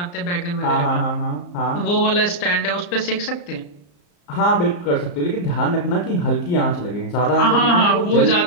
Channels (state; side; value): late; right; 34 ms